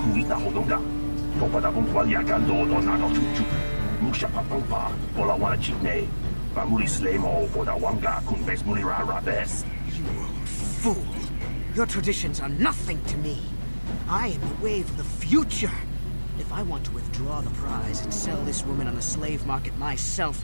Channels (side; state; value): both; inverted; correlation -1.00